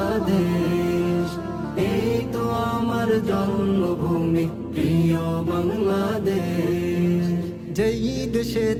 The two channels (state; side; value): identical; both; correlation 1.00